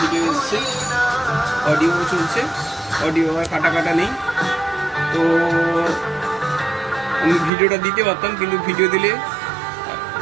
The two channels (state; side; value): drops out; left; at 7.5 s